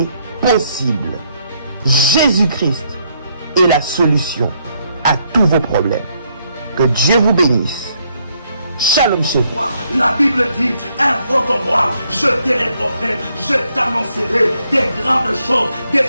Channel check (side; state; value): both; inverted; correlation -0.73